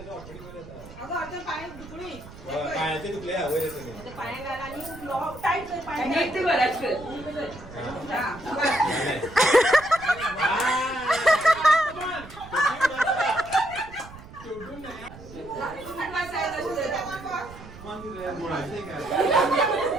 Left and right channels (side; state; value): right; noise; rumble, 17 dB below the sound